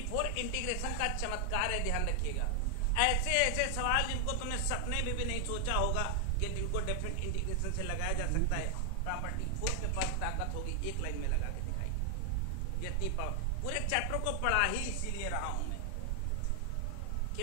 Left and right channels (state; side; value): different; both; correlation 0.00